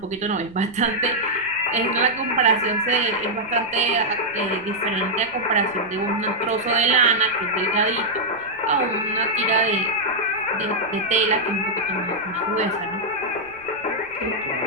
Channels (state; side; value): noise; right; rumble, 26 dB below the sound